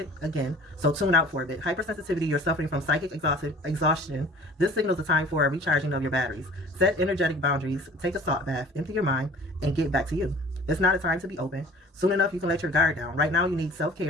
again, so tune out for a bit. Hypersensitivity, you're suffering from psychic exhaustion. This signals the time for a recharging of your batteries. Set energetic boundaries, take a salt bath, empty your mind, and get back to you. It's not a time to be open. Soon enough, you can let your guard down. Right now, you need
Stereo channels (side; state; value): both; normal; correlation 0.47